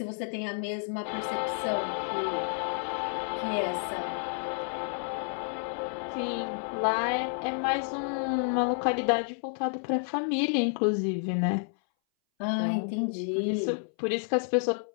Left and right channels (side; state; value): right; silent; 58 dB below the other